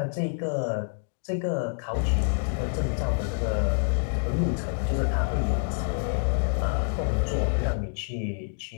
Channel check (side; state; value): right; silent; 59 dB below the other